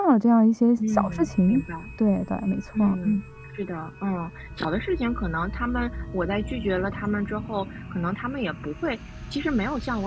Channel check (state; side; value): identical; both; correlation 1.00